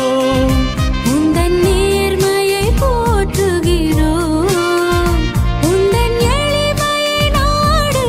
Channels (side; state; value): both; identical; correlation 1.00